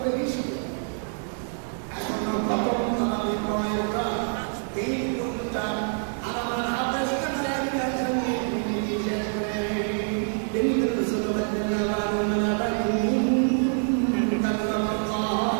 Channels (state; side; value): silent; left; 58 dB below the other